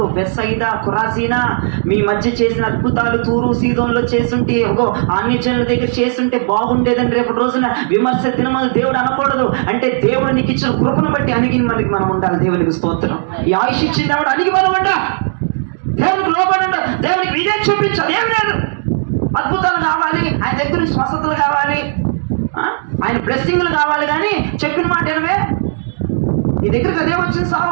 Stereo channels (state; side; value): silent; left; digital silence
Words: బెత్సయిదా, కొరాజీనా మీ మధ్య చేసిన అద్భుతాలు తూరు సీదోన్లో చేస్తుంటే, అన్యజనుల దగ్గర చేస్తుంటే బాగుండేదని రేపటి రోజున విమర్శ దినమని దేవుడు అనకూడదు. అంటే దేవుడు నీకు ఇచ్చిన కృపను బట్టి అణిగి మనకి మనం ఉండాలి. దేవునికి స్తోత్రం. ఈ ఆయుష్ ఇచ్చింది దేవుడు, అణిగి మనం ఉండాలి. దేవునికి లోబడి ఉండాలి. దేవునికి ఇదే చూపించాలి. ఏం లేదు, అద్భుతాలు కావాలి, ఆయన దగ్గర స్వస్థతలు కావాలి, ఆయన బ్లెస్సింగ్లు కావాలి. కానీ చెప్పిన మాట ఏనవే, నీ దగ్గరికి అదే వచ్చింది